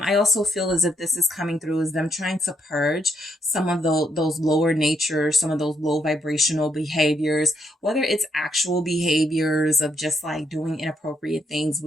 also feel as if this is coming through as them trying to purge some of those lower nature, some of those low vibrational behaviors, whether it's actual behaviors of just like doing inappropriate things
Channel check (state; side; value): normal; both; correlation 0.75